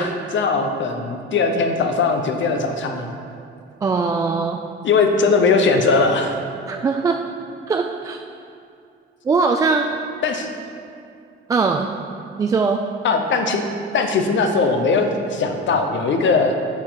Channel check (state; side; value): normal; both; correlation 0.25